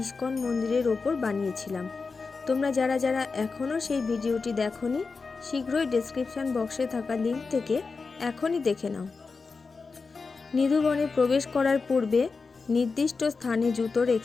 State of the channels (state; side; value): quieter; right; 4.5 dB